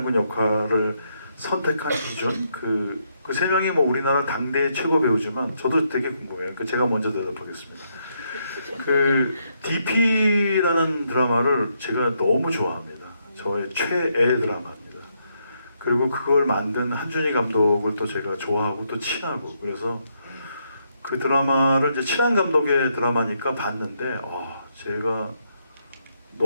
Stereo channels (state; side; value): inverted; both; correlation -0.77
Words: 역할을 선택한 기준 그 세 명이 뭐 우리나라 당대 최고 배우지만 저도 되게 궁금해요. 제가 먼저 대답하겠습니다. 그 DP라는 드라마를 제가 너무 좋아합니다. 저의 최애 드라마입니다. 그리고 그걸 만든 한준희 감독을 또 제가 좋아하고 또 친하고 그래서 그 드라마를 이제 친한 감독의 드라마니까 봤는데 제가